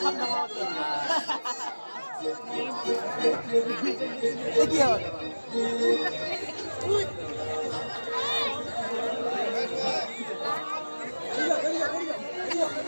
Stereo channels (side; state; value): both; inverted; correlation -1.00